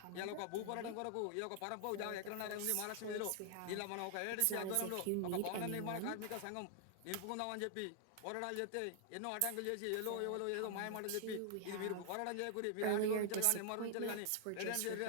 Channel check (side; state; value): both; different; correlation 0.00